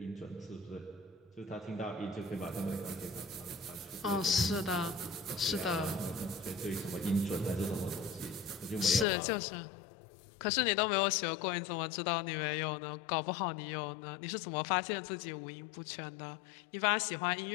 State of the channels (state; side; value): drops out; right; at 9.1 s